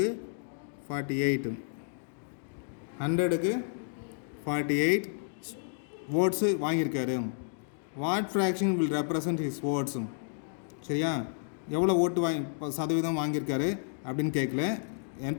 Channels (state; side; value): silent; right; digital silence